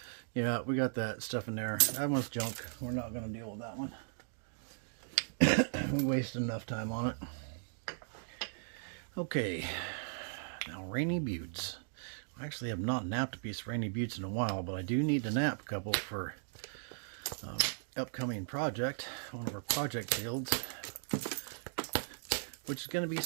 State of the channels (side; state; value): left; silent; digital silence